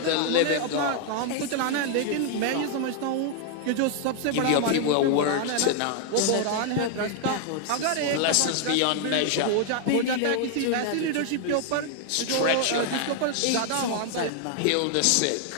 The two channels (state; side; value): different; both; correlation 0.00